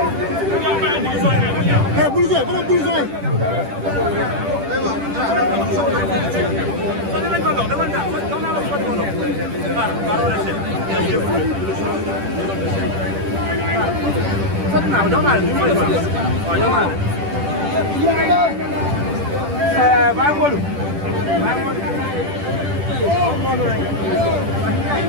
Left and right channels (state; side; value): late; left; 10 ms